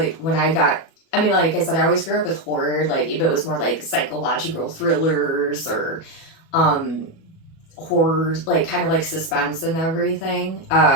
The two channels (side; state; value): right; late; 37 ms